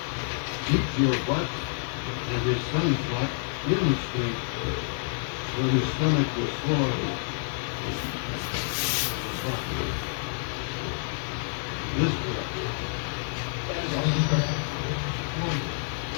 keep your butt and your son's butt in the street so his stomach was full of it. This boy.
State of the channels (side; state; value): right; silent; 59 dB below the other